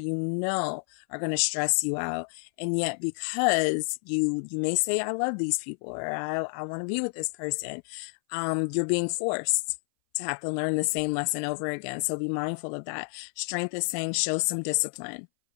are going to stress you out. And yet because you may say, I love these people, or I want to be with this person. You're being forced to have to learn the same lesson over again. So be mindful of that. Strength is saying, show some discipline.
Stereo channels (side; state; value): right; silent; 59 dB below the other